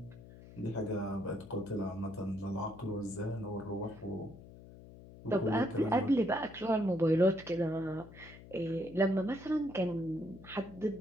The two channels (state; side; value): noise; left; hum, 17 dB below the sound